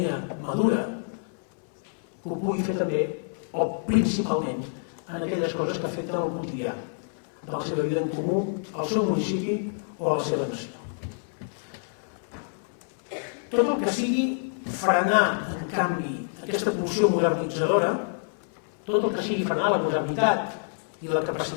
madura, que ho pugui fer també, o principalment, en aquelles coses que afecten el quotidià de la seva vida en comú, al seu municipi o a la seva nació. Tot el que sigui frenar, en canvi, aquesta pulsió modernitzadora, tot el que sigui frenar la modernitat i la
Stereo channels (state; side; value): silent; right; 60 dB below the other